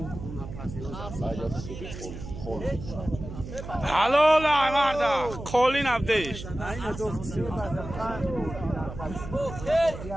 هلو لا مردا کلی نبدیش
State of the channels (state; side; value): noise; right; hum, 10 dB below the sound